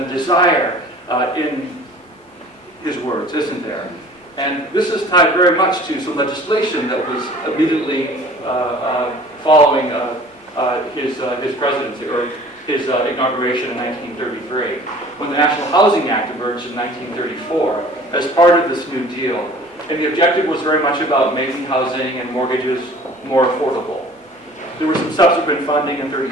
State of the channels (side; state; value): both; normal; correlation 0.47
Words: desire in his words, isn't there? And this is tied very much to some legislation that was immediately following his presidency, or his inauguration in 1933, when the National Housing Act emerged in 1934 as part of this New Deal. And the objective was very much about making housing and mortgages more affordable. There was some subsequent funding in